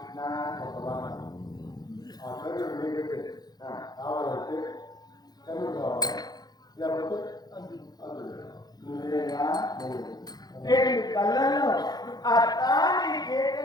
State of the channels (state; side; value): late; right; 0.19 ms